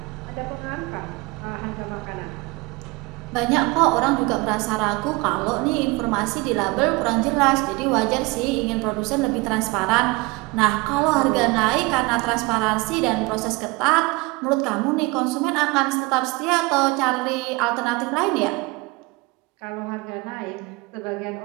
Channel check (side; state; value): left; quieter; 24.5 dB